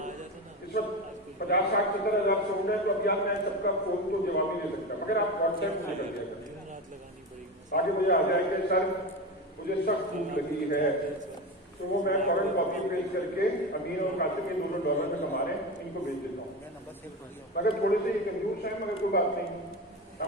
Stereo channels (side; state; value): both; normal; correlation 0.22